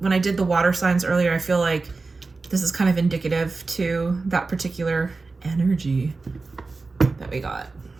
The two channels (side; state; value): left; quieter; 3.8 dB